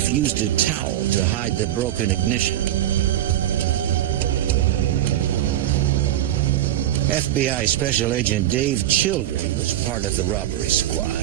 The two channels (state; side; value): quieter; left; 12.5 dB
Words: used a towel to hide the broken ignition. FBI Special Agent Dave Childry was part of the robbery